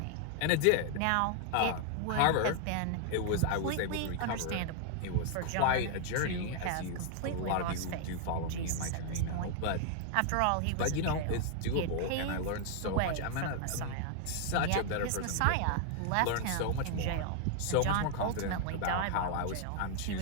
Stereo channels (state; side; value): different; both; correlation 0.00